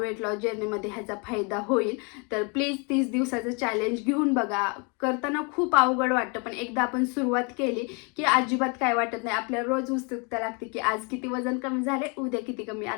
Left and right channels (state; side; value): quieter; right; 33.2 dB